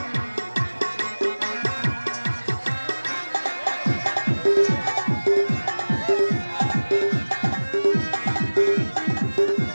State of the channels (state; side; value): inverted; both; correlation -1.00